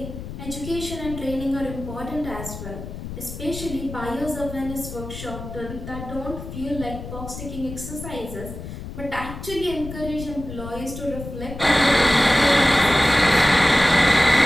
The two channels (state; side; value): noise; left; rumble, 10 dB below the sound